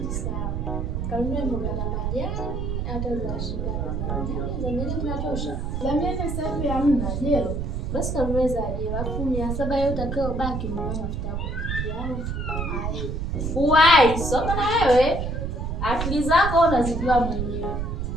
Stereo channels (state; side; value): noise; right; rumble, 2 dB below the sound